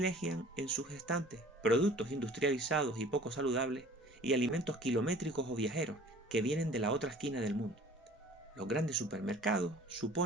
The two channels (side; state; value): both; normal; correlation 0.48